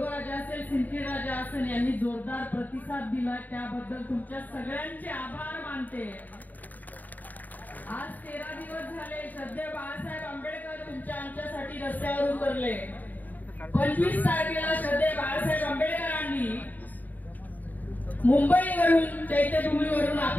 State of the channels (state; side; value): late; right; 0.083 ms